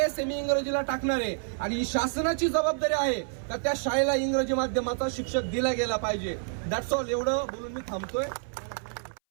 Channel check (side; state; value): left; silent; 59 dB below the other